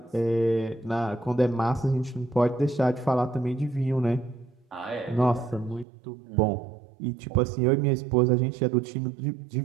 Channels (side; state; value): left; drops out; at 5.9 s